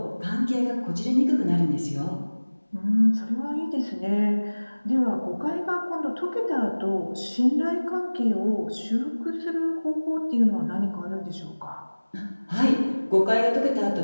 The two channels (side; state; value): both; inverted; correlation -1.00